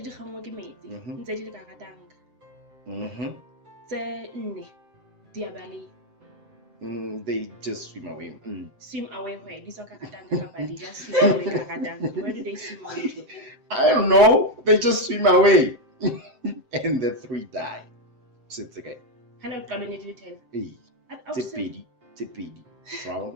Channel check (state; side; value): late; left; 7.7 ms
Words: di gangwa ke metsi ntse di le ka ratanga. Tse nne di a bale. They just swim away. Swim away where? These are kakatanga kapa they just swim away kakatanga. Where do they swim away to? I don't know. They just swim away. And the 3 die. So it's okay. Hana uqalene di 10. Hey. Tse pedi.